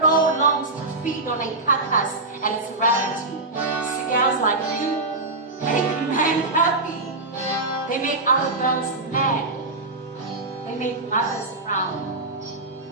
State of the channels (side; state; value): left; quieter; 3.1 dB